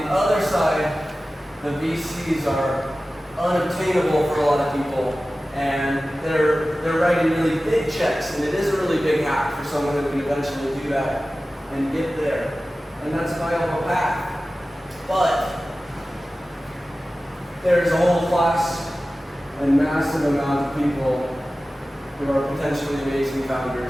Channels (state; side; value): normal; both; correlation 0.96